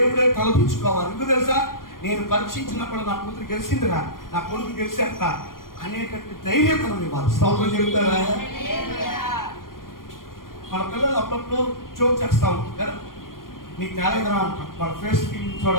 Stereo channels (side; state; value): right; late; 0.91 ms